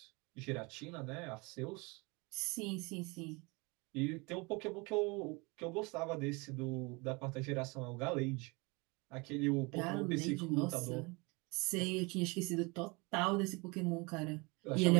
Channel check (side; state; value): left; quieter; 27.4 dB